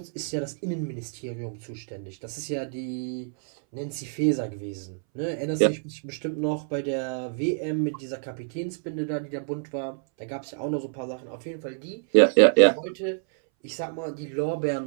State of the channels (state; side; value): silent; left; 60 dB below the other